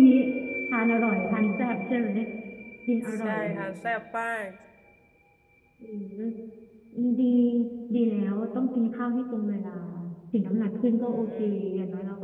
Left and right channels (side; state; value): both; identical; correlation 1.00